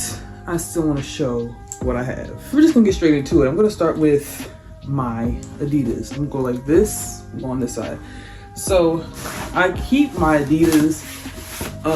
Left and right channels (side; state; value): both; identical; correlation 1.00